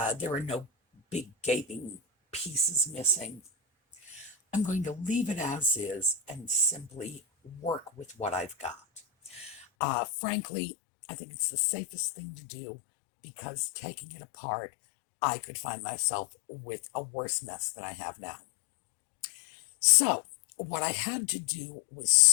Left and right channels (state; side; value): drops out; right; at 9.7 s